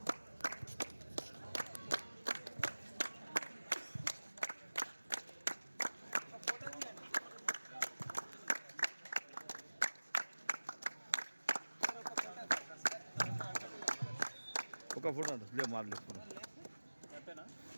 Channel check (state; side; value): inverted; both; correlation -1.00